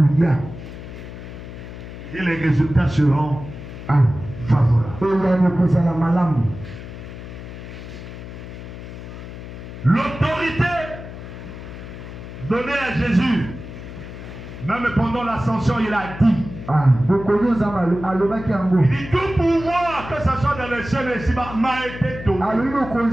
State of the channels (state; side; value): noise; left; hum, 12 dB below the sound